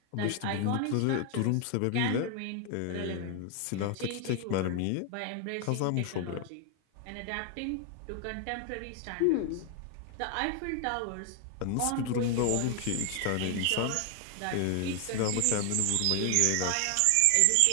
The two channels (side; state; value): both; different; correlation 0.00